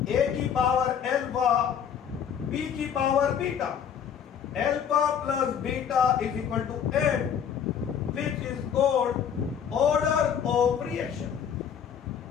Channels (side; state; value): right; quieter; 8.1 dB